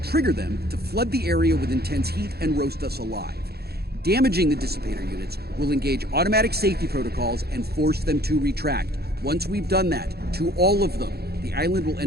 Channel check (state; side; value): late; left; 0.46 ms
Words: trigger them to flood the area with intense heat and roast us alive. Damaging the dissipator units will engage automatic safety protocols and force them to retract. Once we've done that, to all of them, the island will